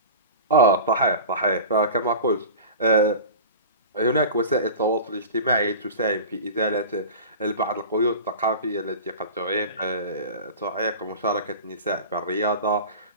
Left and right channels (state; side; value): inverted; both; correlation -0.34